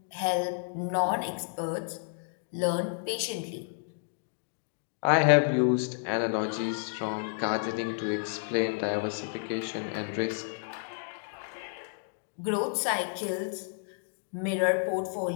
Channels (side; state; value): right; silent; digital silence